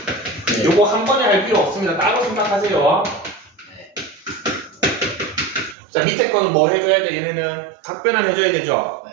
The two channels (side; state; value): left; drops out; at 5.8 s